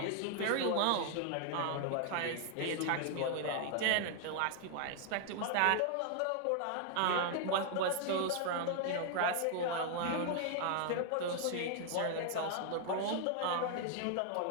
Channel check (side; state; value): both; different; correlation 0.00